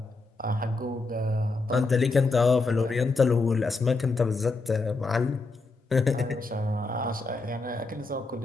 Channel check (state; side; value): quieter; right; 3.5 dB